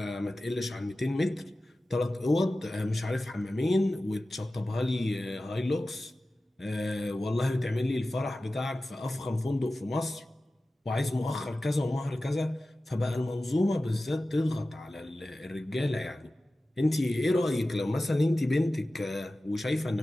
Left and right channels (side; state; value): both; normal; correlation 0.95